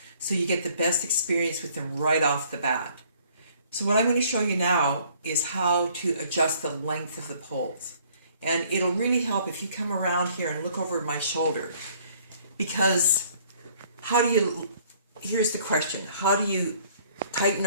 so you get the best experience with them right off the bat. So what I'm going to show you now is how to adjust the length of the poles, and it'll really help if you come around here and look over my shoulder, because here's the question, how do you tighten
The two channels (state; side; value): inverted; both; correlation -0.60